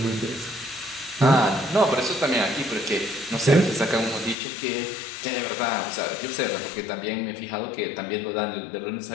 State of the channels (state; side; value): drops out; right; at 4.4 s